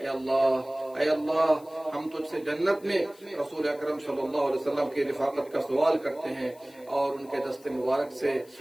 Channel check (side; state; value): left; noise; hiss, 26 dB below the sound